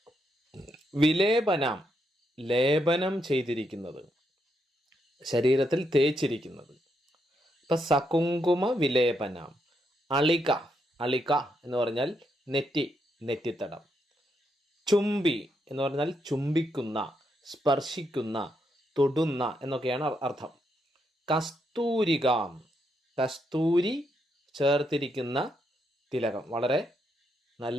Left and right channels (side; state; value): both; normal; correlation 0.79